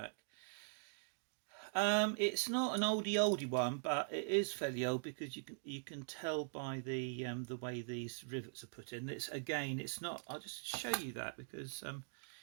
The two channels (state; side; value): silent; left; digital silence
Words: It's not an oldie one, but it is fairly old because you can tell by the way these rivets are put in. It's not. I'll just show you that because